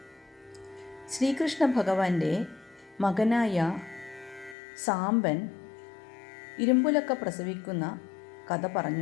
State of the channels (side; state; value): right; drops out; at 4.5 s